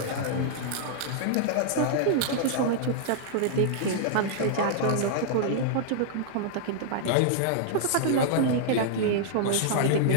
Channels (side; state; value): both; different; correlation -0.01